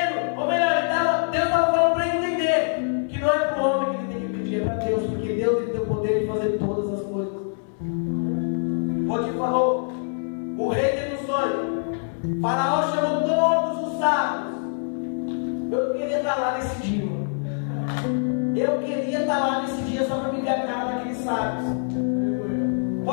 ou melhor, Deus estava falando para ele entender que não é para o homem que ele tem que pedir, é para Deus, porque Deus ele tem o poder de fazer todas as coisas. Potifar falou, o rei Faraó chamou todos os sábios. Eu queria estar lá nesse dia. Eu queria estar lá nesse dia só para me ver a cara daqueles sábios.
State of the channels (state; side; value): silent; right; 62 dB below the other